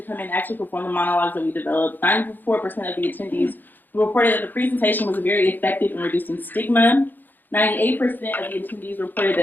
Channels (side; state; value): right; late; 0.089 ms